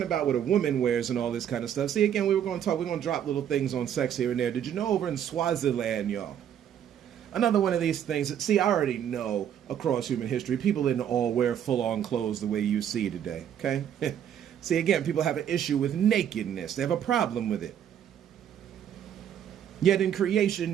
about what a woman wears and all this kind of stuff. See, again, we're going to drop little things on sex here and there. Did you know over in Swaziland, y'all? Another one of these things. See, I already know across human history, people didn't all wear full-on clothes the way you see today, okay? See, again, people have an issue with nakedness. They have a problem with it. Yet in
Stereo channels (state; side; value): quieter; left; 9.6 dB